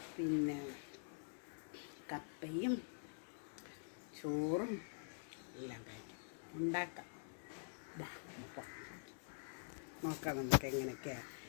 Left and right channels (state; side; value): silent; right; digital silence